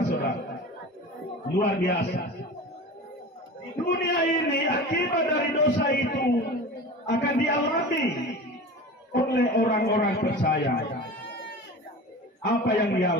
Luar biasa. Di dunia ini akibat dari dosa itu akan dialami oleh orang-orang percaya. Apa yang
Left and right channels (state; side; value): normal; both; correlation 0.34